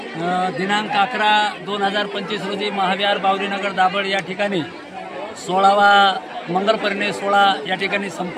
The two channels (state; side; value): identical; both; correlation 1.00